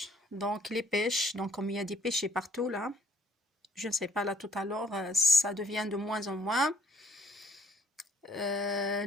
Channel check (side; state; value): both; normal; correlation 0.64